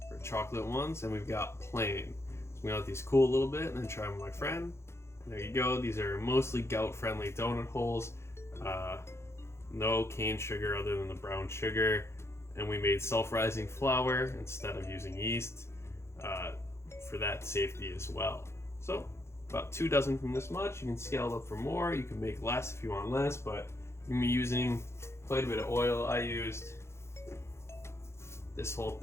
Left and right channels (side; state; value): right; late; 0.13 ms